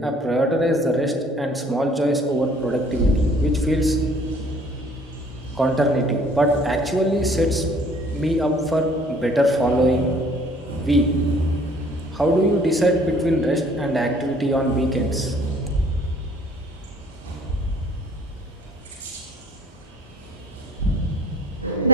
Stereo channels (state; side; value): normal; both; correlation 0.57